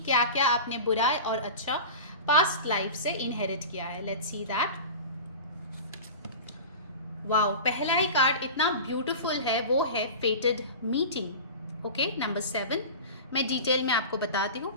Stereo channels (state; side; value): inverted; both; correlation -0.31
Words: क्या क्या आपने बुरा और अच्छा पास्ट लाइफ से इनहेरिट किया है। Let's see that. वाओ, पहला ही कार्ड इतना ब्यूटीफुल है, वो है फेटेड मीटिंग। Okay, number 7। मैं डिटेल में आपको बताती हूँ,